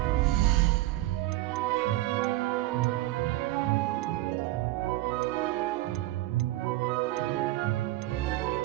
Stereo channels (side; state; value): left; quieter; 17.0 dB